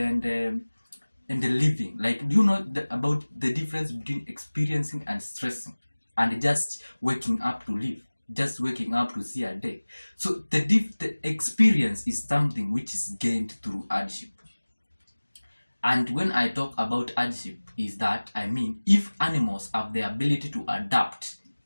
living? Like, do you know about the difference between experiencing and stressing and just waking up to live, just waking up to see a day? So the experience is something which is gained through hardship. And when I talk about hardship, is that I mean if animals have the ability to adapt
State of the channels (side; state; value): both; inverted; correlation -1.00